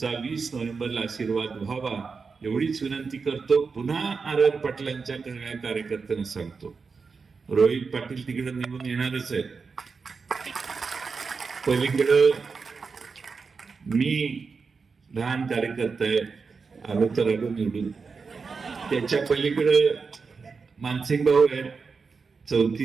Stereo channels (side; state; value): left; quieter; 5.0 dB